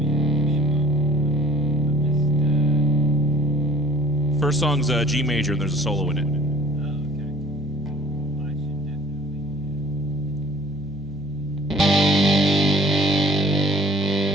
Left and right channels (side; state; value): both; normal; correlation 0.50